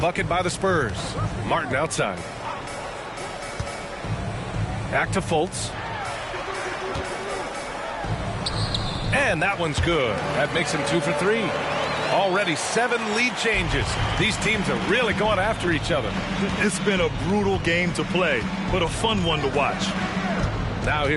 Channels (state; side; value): identical; both; correlation 1.00